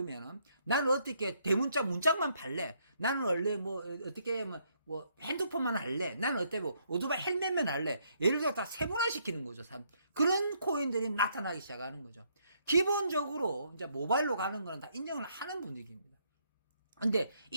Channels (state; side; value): inverted; both; correlation -0.71